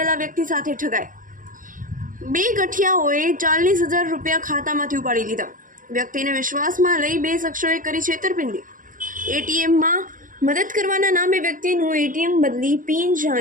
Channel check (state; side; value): late; left; 0.39 ms